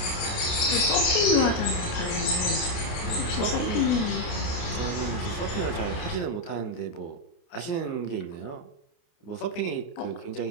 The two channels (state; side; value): late; right; 28 ms